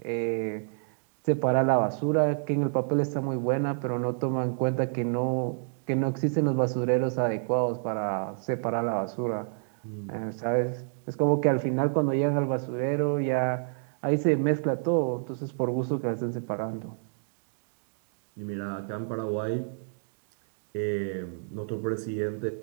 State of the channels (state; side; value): silent; left; digital silence